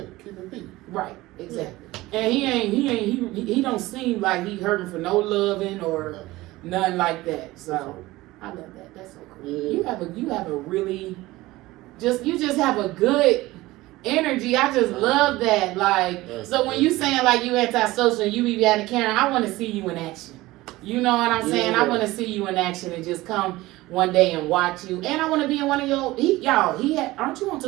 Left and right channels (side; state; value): left; quieter; 18.7 dB